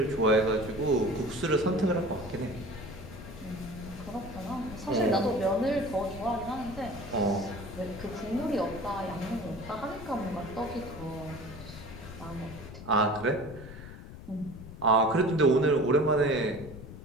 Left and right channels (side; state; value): left; noise; rumble, 13 dB below the sound